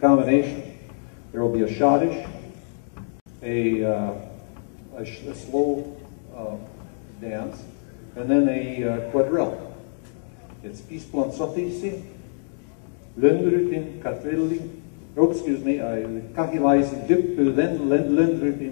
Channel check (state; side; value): silent; right; digital silence